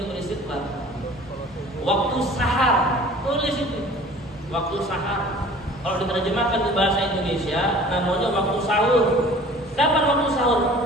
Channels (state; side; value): normal; both; correlation 0.47